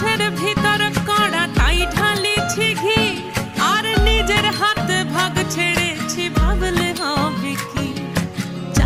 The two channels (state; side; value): identical; both; correlation 1.00